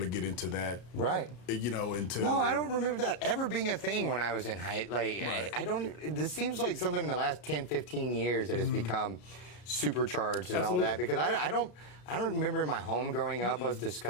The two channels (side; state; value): right; late; 33 ms